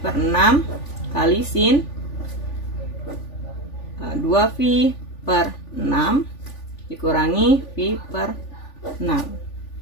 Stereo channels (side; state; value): right; late; 3.4 ms